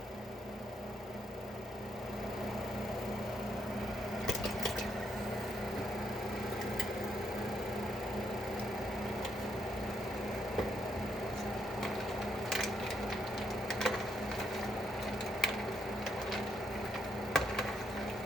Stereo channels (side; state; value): both; normal; correlation 0.75